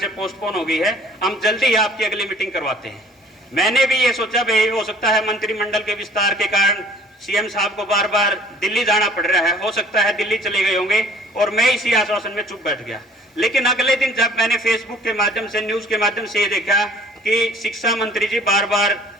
पोस्टपोन हो गई है, हम जल्दी ही आपकी अगली मीटिंग करवाते हैं। मैंने भी ये सोचा भाई हो सकता है मंत्रिमंडल के विस्तार के कारण सीएम साहब को बार बार दिल्ली जाना पड़ रहा है, हो सकता है दिल्ली चले गए होंगे, और मैं इसी आश्वासन में चुप बैठ गया। लेकिन अगले दिन जब मैंने फेसबुक के माध्यम से, न्यूज के माध्यम से ये देखा कि शिक्षा मंत्री जी बार बार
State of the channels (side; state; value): both; normal; correlation 0.53